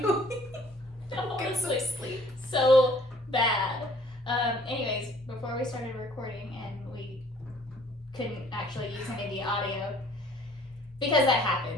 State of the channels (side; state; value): both; normal; correlation 0.57